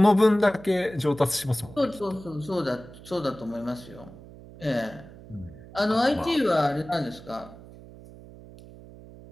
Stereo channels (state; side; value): noise; right; hum, 18 dB below the sound